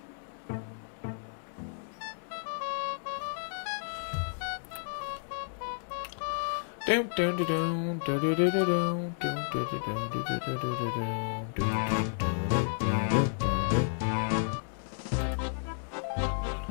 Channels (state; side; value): silent; right; digital silence